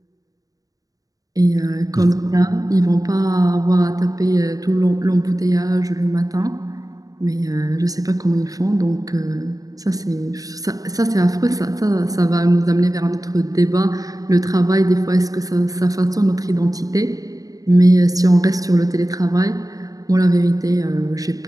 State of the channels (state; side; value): late; left; 0.17 ms